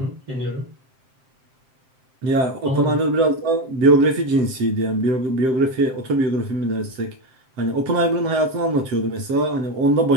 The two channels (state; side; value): late; left; 7.6 ms